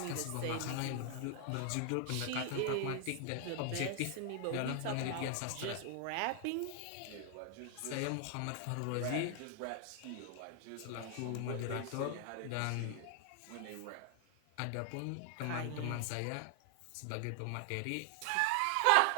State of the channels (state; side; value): different; both; correlation 0.00